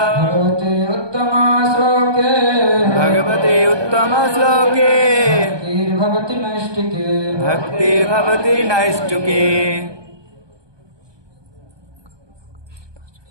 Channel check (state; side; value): late; left; 1.2 ms